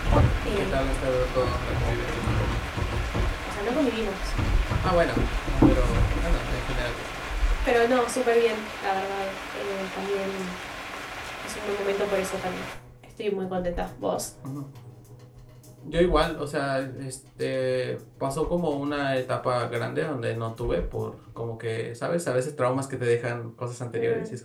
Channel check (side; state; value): both; identical; correlation 1.00